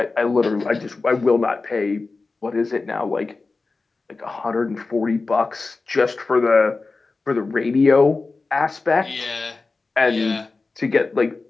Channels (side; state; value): right; quieter; 3.8 dB